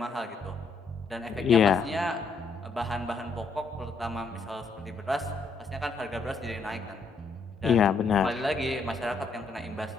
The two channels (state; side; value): quieter; right; 4.1 dB